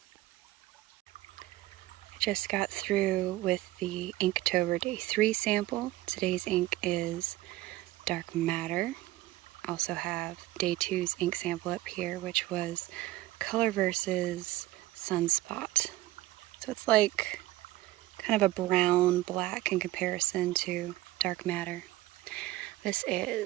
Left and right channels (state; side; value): quieter; left; 17.0 dB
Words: just got through with the Inktober Day 3 sample. Today's ink is Dark Matter. Also have Day 2's ink sample up here, which was Color versus Sunspot. So it's like kind of a brown black in comparison to Dark Matter. This